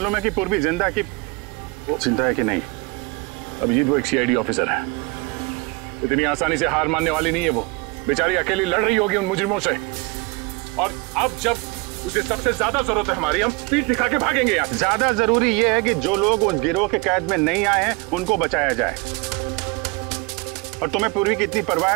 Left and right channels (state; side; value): quieter; left; 26.1 dB